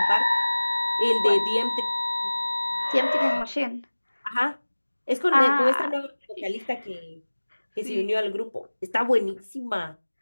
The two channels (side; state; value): both; inverted; correlation -1.00